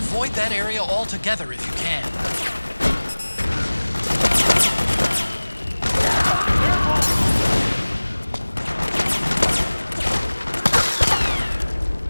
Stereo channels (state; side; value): inverted; both; correlation -1.00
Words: that area altogether if you can.